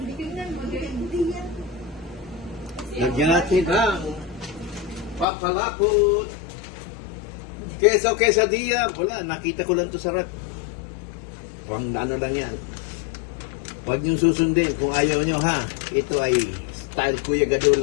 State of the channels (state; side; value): drops out; right; at 5.2 s